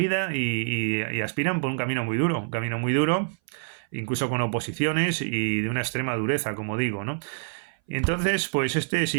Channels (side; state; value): left; silent; 59 dB below the other